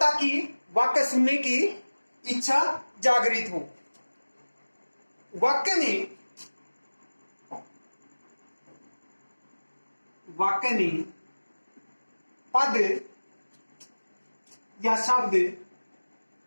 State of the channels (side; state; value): both; inverted; correlation -1.00